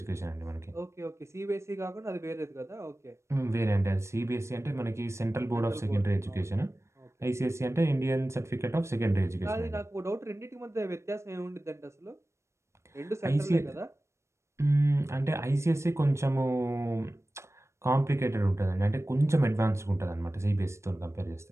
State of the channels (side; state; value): left; late; 0.13 ms